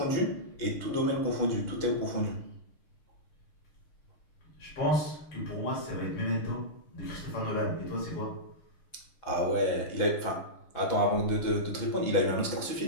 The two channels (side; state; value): right; late; 6.5 ms